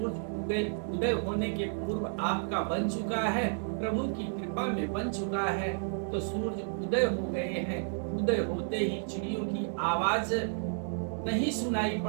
उदय होने के पूर्व आपका बन चुका है, प्रभु की कृपा में बन चुका है। तो सूर्य उदय हो गए हैं। उदय होते ही चिड़ियों की आवाज नहीं सुनाई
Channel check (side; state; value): left; silent; digital silence